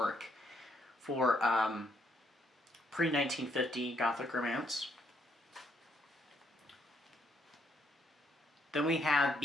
for pre-1950 Gothic romance. Then we have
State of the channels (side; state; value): both; normal; correlation 0.73